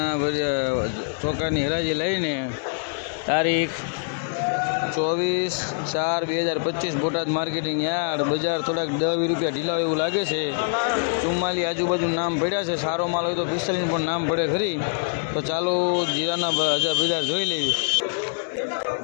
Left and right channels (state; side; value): silent; right; digital silence